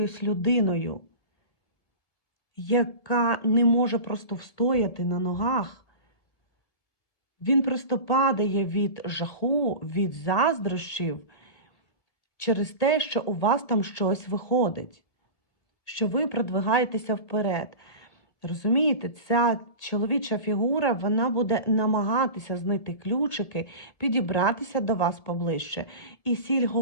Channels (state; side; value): late; right; 1.7 ms